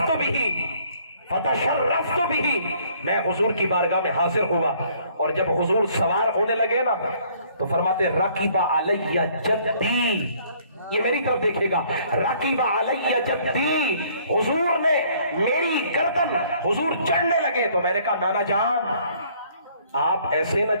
فتشرفت بھی، میں حضور کی بارگاہ میں حاضر ہوا، اور جب حضور سوار ہونے لگے نا تو فرماتے رقیب علیہ جدی، یہ میری طرف دیکھے گا، رقیب علیہ جدی، حضور نے میری گردن، حضور چڑھنے لگے تو میں نے کہا نانا جان آپ ایسے نہ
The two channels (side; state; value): both; inverted; correlation -0.61